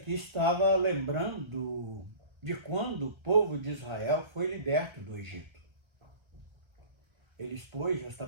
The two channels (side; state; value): left; late; 1.3 ms